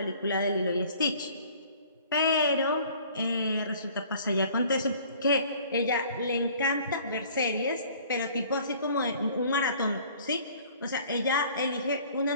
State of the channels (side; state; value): both; inverted; correlation -0.52